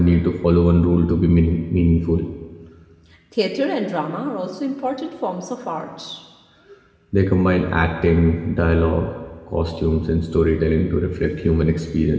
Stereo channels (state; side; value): identical; both; correlation 1.00